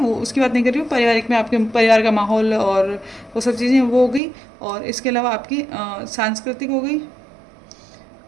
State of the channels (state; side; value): drops out; left; at 4.2 s